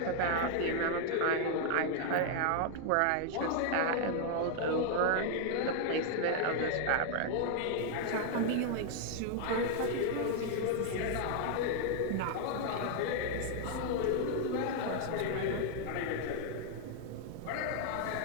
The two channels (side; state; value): both; different; correlation 0.00